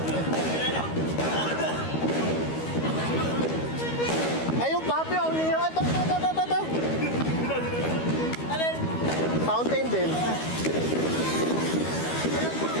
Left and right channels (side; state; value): right; late; 13 ms